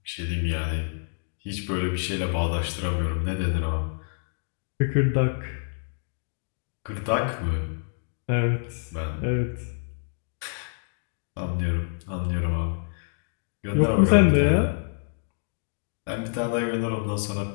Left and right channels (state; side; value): silent; right; digital silence